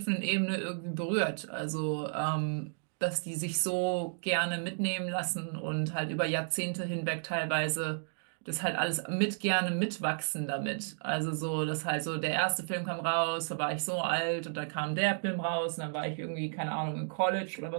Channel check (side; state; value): left; silent; digital silence